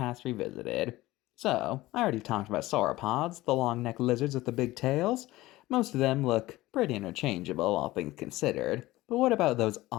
Revisited. So, I already talked about sauropods, the long-necked lizards with the big tails. Most of them look pretty interchangeable, all things considered. But what about those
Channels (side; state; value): right; quieter; 18.0 dB